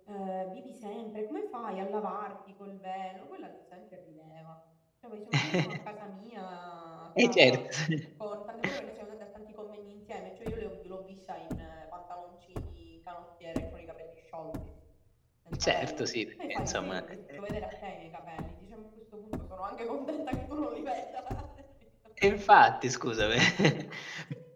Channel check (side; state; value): both; identical; correlation 1.00